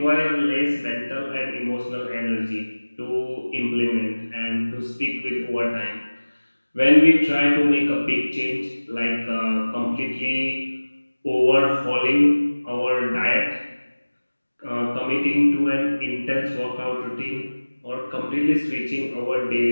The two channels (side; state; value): both; inverted; correlation -1.00